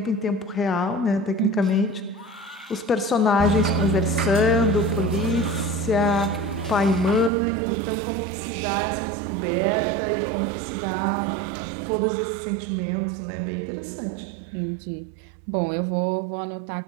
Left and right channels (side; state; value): left; drops out; at 7.3 s